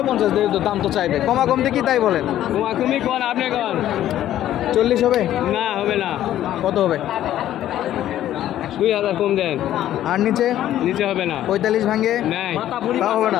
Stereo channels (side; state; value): right; quieter; 12.4 dB